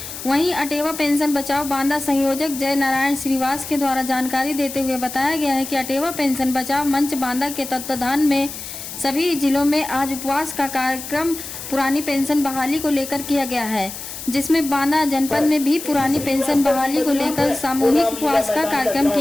वहीं अटेवा पेंशन बचाओ बांदा संयोजक जय नारायण श्रीवास के द्वारा जानकारी देते हुए बताया गया है कि अटेवा पेंशन बचाओ मंच बांदा के तत्वाधान में सभी जिलों में आज उपवास का कार्यक्रम पुरानी पेंशन बहाली को लेकर किया गया है, जिसमें बांदा जनपद में भी पुरानी पेंशन बहाली को लेकर सामूहिक उपवास का कार्यक्रम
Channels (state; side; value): noise; left; hiss, 10 dB below the sound